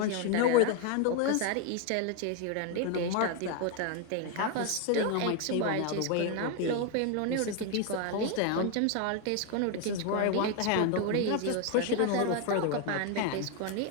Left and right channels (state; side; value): different; both; correlation 0.01